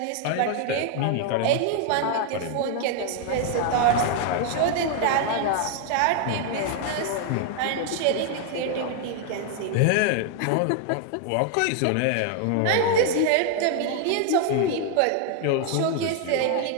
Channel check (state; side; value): different; both; correlation 0.00